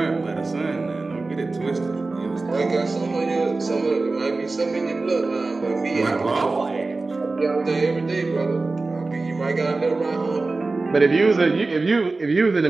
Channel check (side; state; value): left; quieter; 3.5 dB